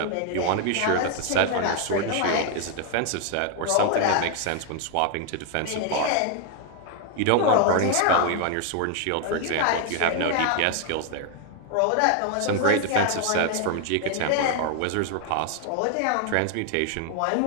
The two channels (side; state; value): both; different; correlation 0.00